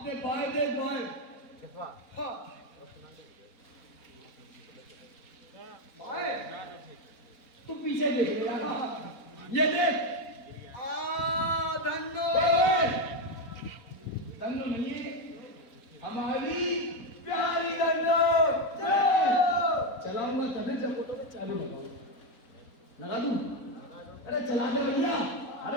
अपने बाएं देख बाएं। हाँ बाएं तू पीछे देख ले यार। ये देख। धन्नो धन्नो नहीं हमारी प्यारी धन्नो। चलाऊंगा तभी जब फोटो पे चालू लगा दूं। अरे चला दे भैया।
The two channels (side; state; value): right; late; 4.0 ms